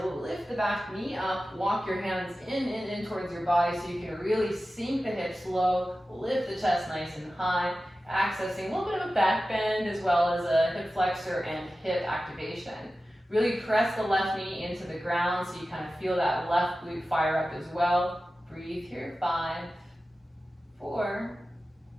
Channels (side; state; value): both; normal; correlation 0.94